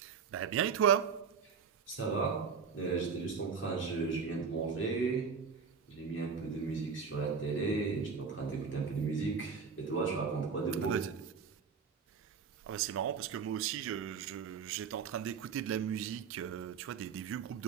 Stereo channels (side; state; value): left; quieter; 5.9 dB